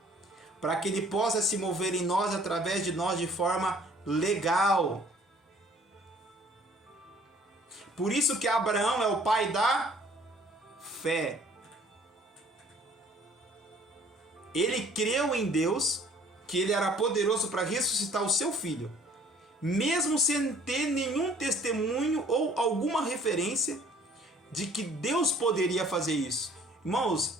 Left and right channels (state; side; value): normal; both; correlation 0.56